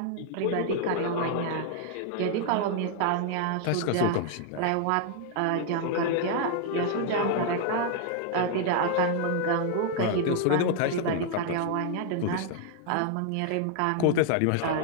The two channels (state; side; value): different; both; correlation 0.00